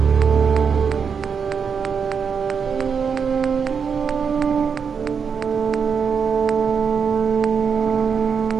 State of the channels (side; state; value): left; quieter; 6.3 dB